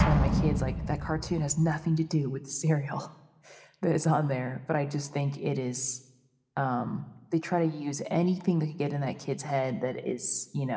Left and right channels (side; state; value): both; identical; correlation 1.00